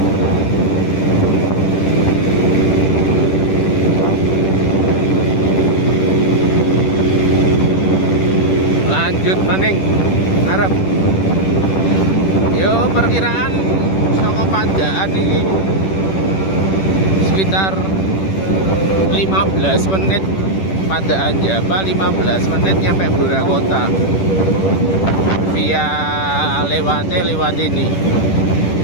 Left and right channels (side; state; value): right; late; 10 ms